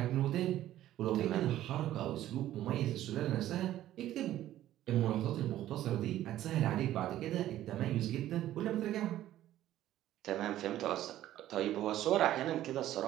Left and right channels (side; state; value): left; quieter; 13.3 dB